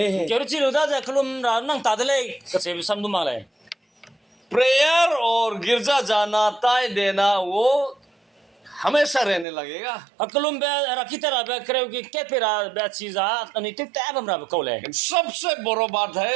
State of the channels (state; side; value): drops out; left; at 9.5 s